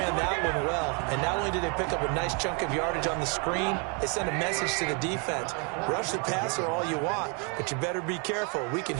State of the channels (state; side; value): quieter; left; 35.5 dB